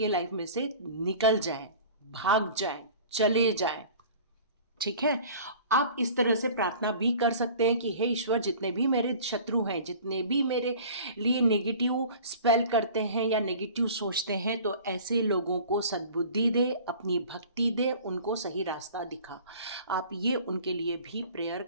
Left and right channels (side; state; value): both; inverted; correlation -0.43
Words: लाइफ में से निकल जाए, भाग जाए, चले जाए। ठीक है। आप इस तरह से प्रार्थना भी कर सकते हैं कि हे ईश्वर, जितने भी मेरे शत्रु हैं, जितने भी मेरे लिए नेगेटिव स्पेल करते हैं या नेगेटिव सोचते हैं, तो ऐसे लोगों को सद्बुद्धि दे, अपनी भक्ति दे, उनको सही रास्ता दिखा। आप ये उनके लिए भी प्रेयर